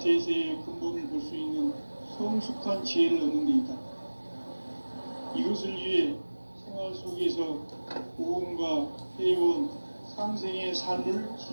근본을 볼 수 있는 성숙한 지혜를 얻는 데 있다. 이것을 위해 생활 속에서 보험과 회원, 상생의 삶을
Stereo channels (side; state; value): both; inverted; correlation -1.00